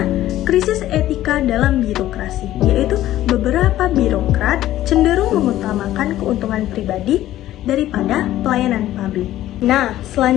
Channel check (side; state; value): right; quieter; 13.9 dB